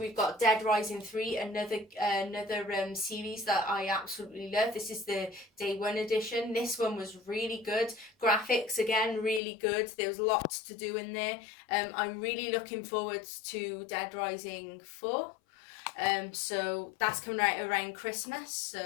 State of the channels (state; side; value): drops out; right; at 9.4 s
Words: got Dead Rising 3, another series that I absolutely love. This is the Day 1 edition. This one was really good. Graphics, again, really good. There was lots to do in there. I'm really looking forward to Dead Rising 4. So that's coming out around Christmas.